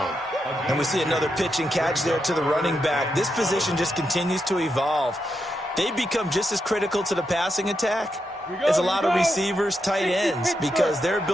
And we see another pitch and catch there to the running back. This position just continues to evolve. They become just as critical to the passing attack as a lot of receivers, tight ends, because their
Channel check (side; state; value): both; normal; correlation 0.84